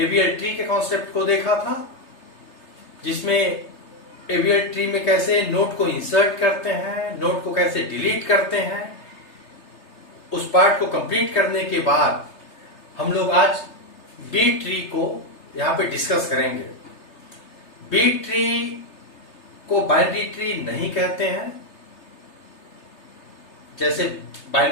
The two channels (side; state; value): right; late; 3.3 ms